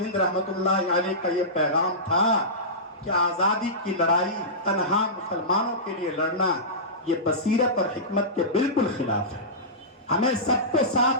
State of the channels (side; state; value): both; normal; correlation -0.18